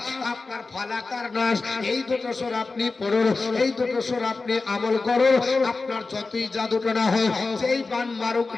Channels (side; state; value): right; quieter; 3.8 dB